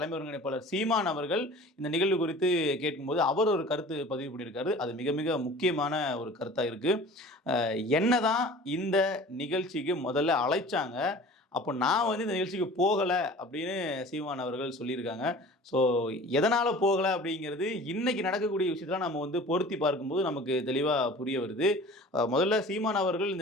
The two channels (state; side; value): normal; both; correlation 0.43